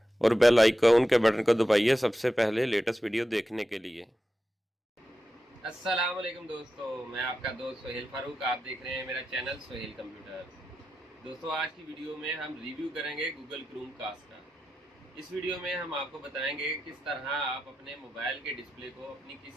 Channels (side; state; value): both; normal; correlation 0.90